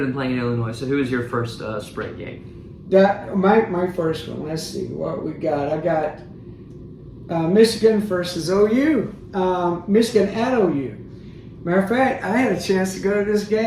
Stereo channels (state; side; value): identical; both; correlation 1.00